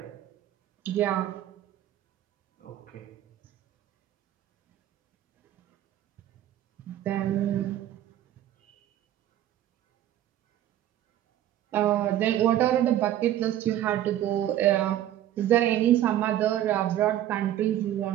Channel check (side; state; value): left; quieter; 12.3 dB